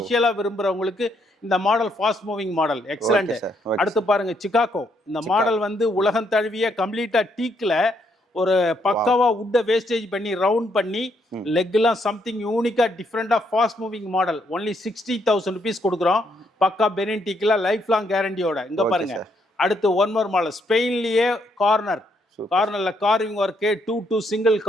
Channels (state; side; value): normal; both; correlation 0.74